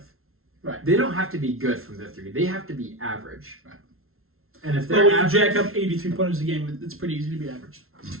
Right. They don't have to be good from the three. They have to be average. Right. And if they're when you jack up 83 pointers a game, it's pretty easy to be average.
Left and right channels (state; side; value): late; left; 0.62 ms